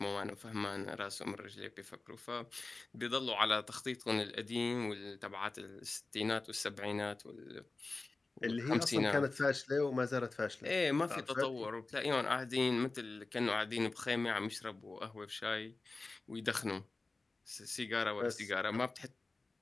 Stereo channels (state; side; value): quieter; right; 3.5 dB